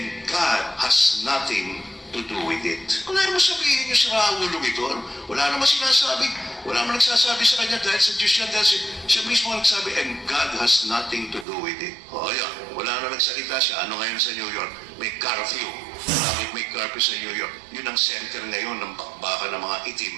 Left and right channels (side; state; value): left; drops out; at 11.5 s